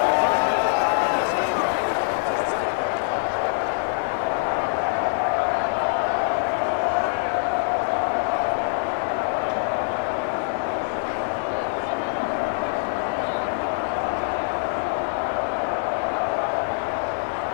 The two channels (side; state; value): right; silent; digital silence